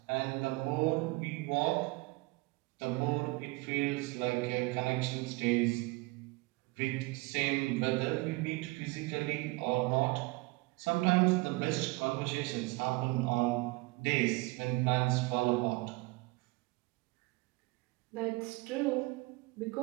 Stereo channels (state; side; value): quieter; left; 23.7 dB